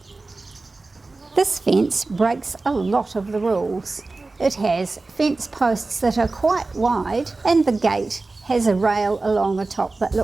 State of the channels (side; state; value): left; quieter; 3.5 dB